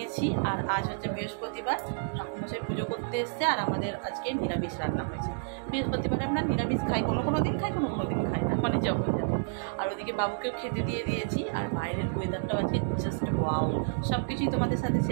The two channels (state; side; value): silent; left; digital silence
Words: আর আজ হচ্ছে বৃহস্পতিবার, ঠাকুরমশাই পুজো করতে এসছে, আর আমাদের আজকে নিরামিষ রান্না হয়েছে। বৃহস্পতিবারে আমরা নিরামিষ খাই, কোনো কোনো দিন খাই, কোনো কোনো দিন খাই না, মানে যখন যাবো। আর ওদিকে বাবুকেও খেতে দিয়ে দিয়েছি। আর বাইরের ওয়েদারটাও আজকে জাস্ট ওয়াও। সব কিছুই তোমাদের সাথে